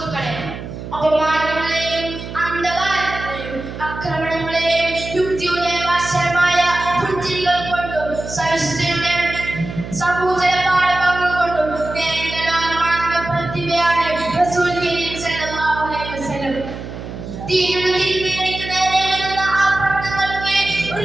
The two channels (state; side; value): noise; right; hum, 10 dB below the sound